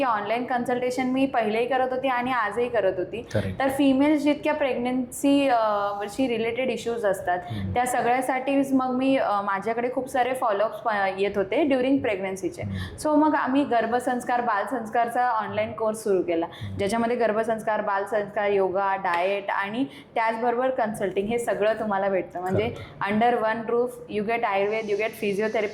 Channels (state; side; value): identical; both; correlation 1.00